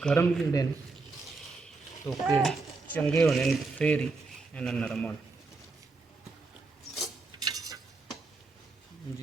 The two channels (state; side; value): quieter; left; 3.8 dB